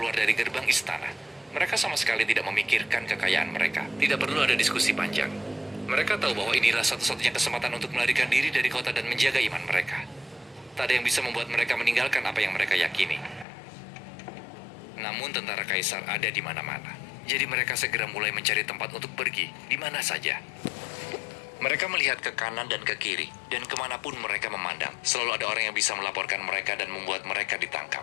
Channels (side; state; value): right; drops out; at 13.5 s